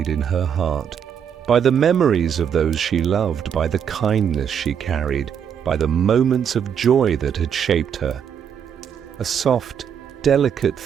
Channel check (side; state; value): left; quieter; 8.0 dB